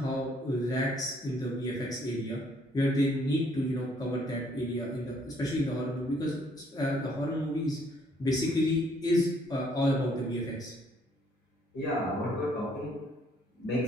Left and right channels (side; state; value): both; normal; correlation 0.65